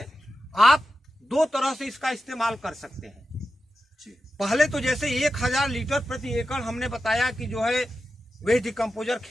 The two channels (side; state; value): both; normal; correlation 0.91